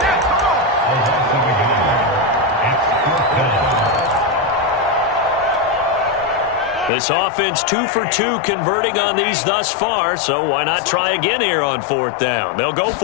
This offense 2 for 2 converting on these thus far, so why not try again here on fourth down? They'll go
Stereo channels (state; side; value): drops out; right; at 6.9 s